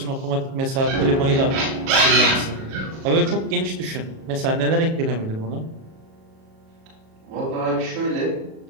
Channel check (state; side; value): late; left; 37 ms